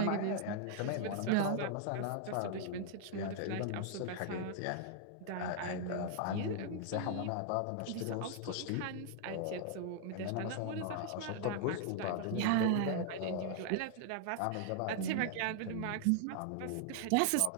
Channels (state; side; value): different; both; correlation 0.00